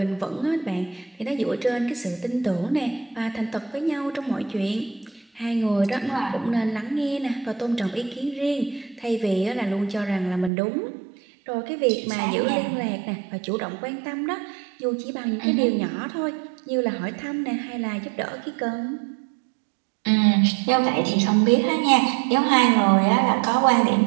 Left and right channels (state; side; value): drops out; left; at 10.5 s